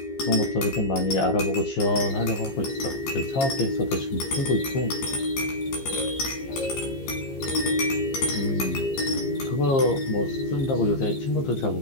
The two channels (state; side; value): late; right; 15 ms